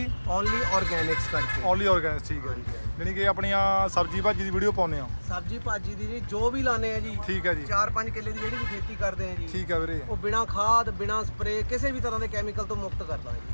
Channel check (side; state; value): both; inverted; correlation -1.00